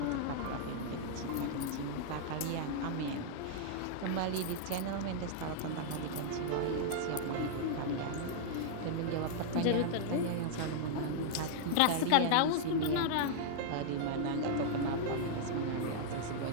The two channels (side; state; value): both; different; correlation -0.01